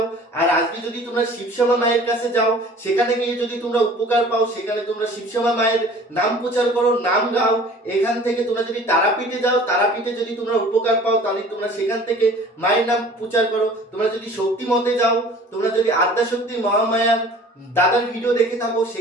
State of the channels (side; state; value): both; normal; correlation 0.47